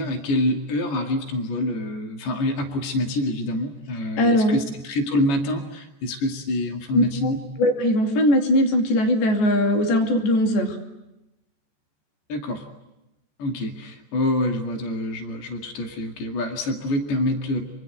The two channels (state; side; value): late; right; 14 ms